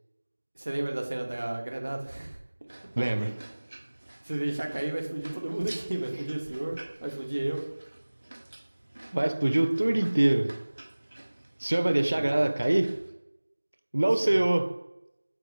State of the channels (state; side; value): inverted; both; correlation -1.00